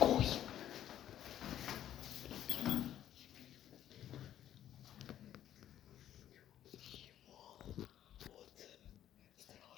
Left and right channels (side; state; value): right; quieter; 11.4 dB